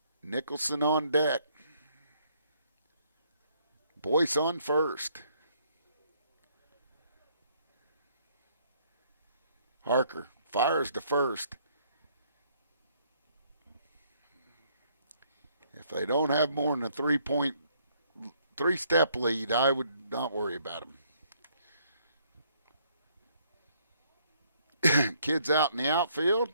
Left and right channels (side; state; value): both; inverted; correlation -0.67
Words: Nicholson on deck. Boyce on first. Harker fires to first. If they don't have more than a 3-step lead, I would not worry about them. Kids out in the outfield,